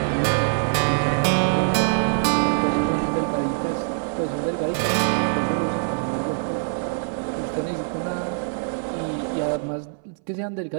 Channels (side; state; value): left; silent; 61 dB below the other